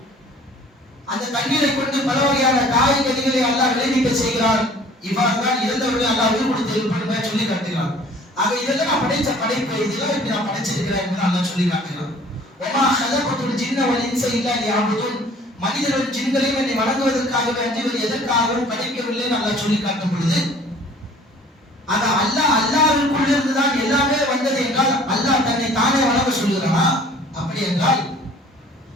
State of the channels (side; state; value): both; normal; correlation 0.51